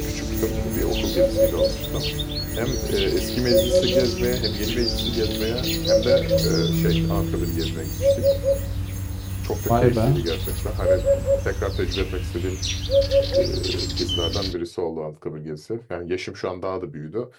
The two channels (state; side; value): identical; both; correlation 1.00